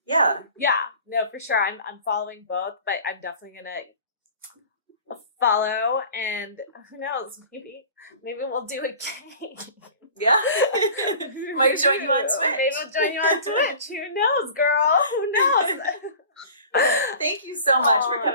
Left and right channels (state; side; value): inverted; both; correlation -0.42